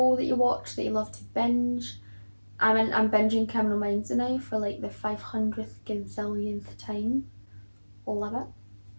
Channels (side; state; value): both; inverted; correlation -1.00